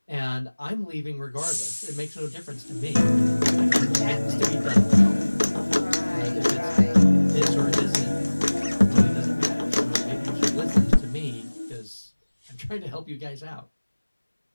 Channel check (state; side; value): inverted; both; correlation -1.00